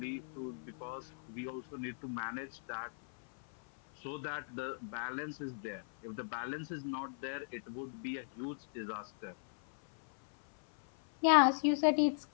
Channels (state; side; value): silent; right; 53 dB below the other